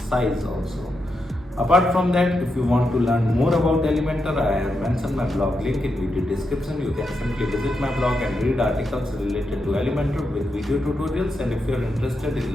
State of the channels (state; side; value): normal; both; correlation 0.85